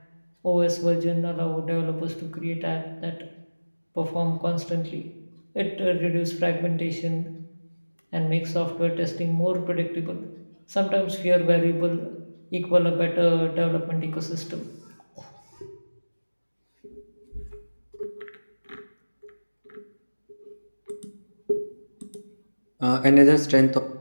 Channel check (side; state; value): both; inverted; correlation -1.00